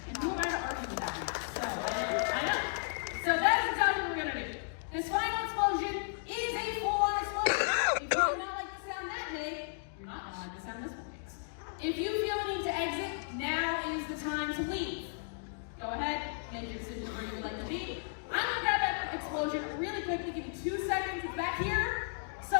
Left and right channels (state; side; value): silent; right; digital silence